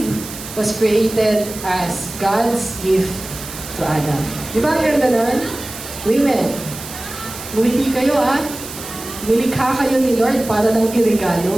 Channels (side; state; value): right; noise; hiss, 12 dB below the sound